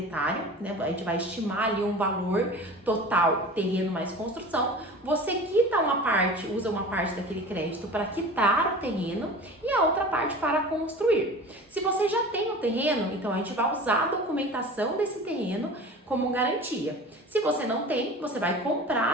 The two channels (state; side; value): normal; both; correlation 0.37